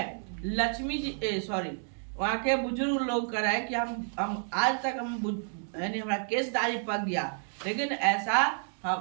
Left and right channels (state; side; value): silent; left; 58 dB below the other